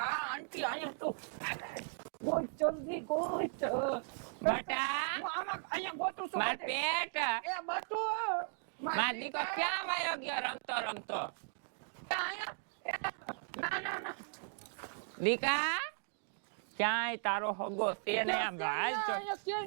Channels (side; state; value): left; silent; digital silence